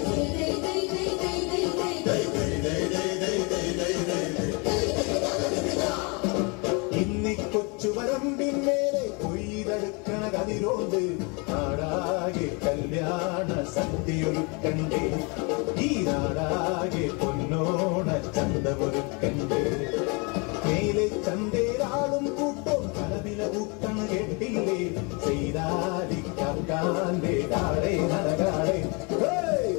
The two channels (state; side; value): quieter; right; 31.1 dB